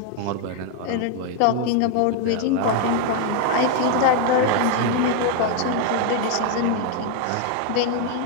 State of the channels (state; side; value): different; both; correlation 0.01